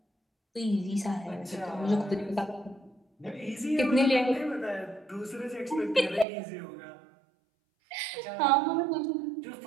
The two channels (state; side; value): drops out; left; at 6.2 s